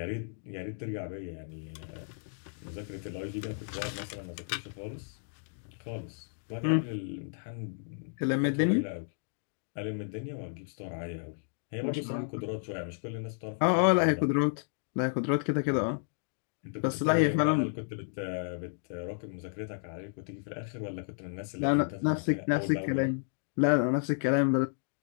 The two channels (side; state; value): right; silent; digital silence